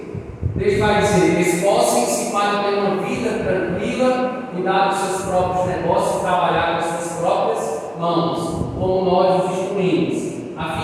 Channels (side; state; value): both; identical; correlation 1.00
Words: Deus vai dizer: esforcem-se para ter uma vida tranquila, cuidar dos seus próprios negócios, trabalhar com as suas próprias mãos, como nós os instruímos, a